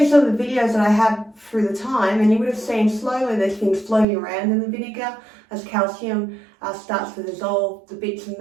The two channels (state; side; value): drops out; left; at 4.0 s